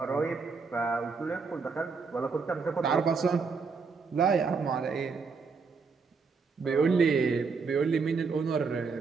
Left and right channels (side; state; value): left; quieter; 5.0 dB